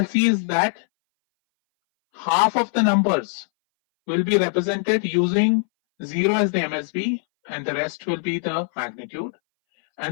see is that half of the numbers will be represented using 0 as the MSB, and the rest will be the magnitude.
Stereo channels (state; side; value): silent; right; 61 dB below the other